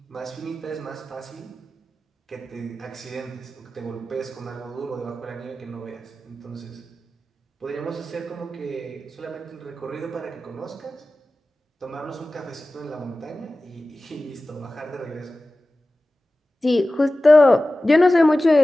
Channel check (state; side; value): normal; both; correlation 0.96